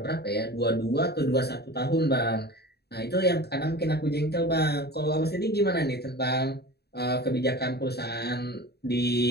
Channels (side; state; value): right; late; 0.47 ms